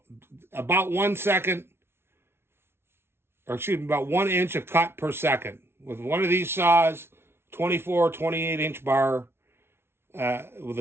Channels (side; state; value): left; late; 0.12 ms